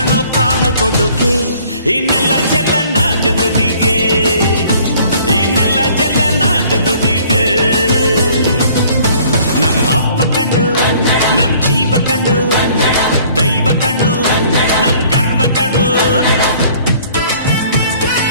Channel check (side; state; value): both; inverted; correlation -0.56